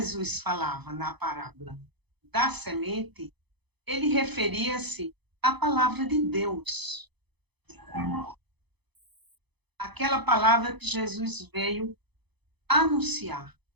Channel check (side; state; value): left; late; 0.99 ms